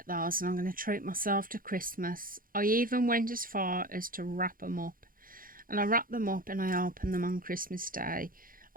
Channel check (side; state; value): left; late; 0.41 ms